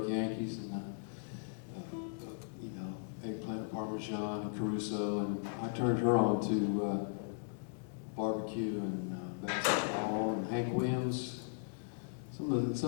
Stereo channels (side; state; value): right; silent; digital silence